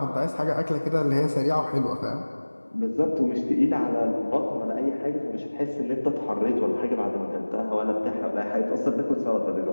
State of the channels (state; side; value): inverted; both; correlation -1.00